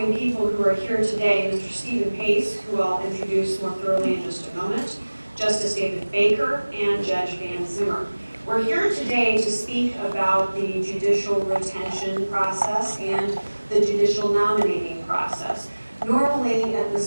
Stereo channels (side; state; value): both; inverted; correlation -1.00